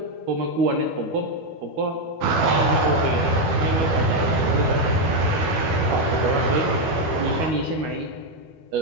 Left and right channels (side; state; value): left; late; 12 ms